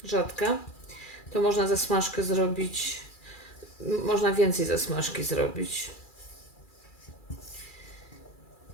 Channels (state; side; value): late; right; 2.3 ms